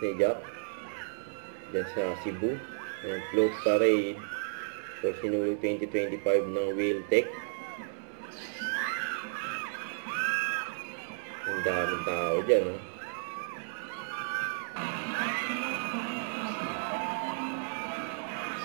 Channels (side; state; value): left; silent; 56 dB below the other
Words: ni Jack dyan sa Cebu. Yung float parade for Sinulog 2025 ng Wheeltech. Ang daming tao dyan, no?